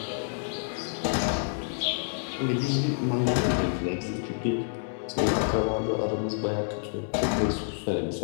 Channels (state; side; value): silent; right; 59 dB below the other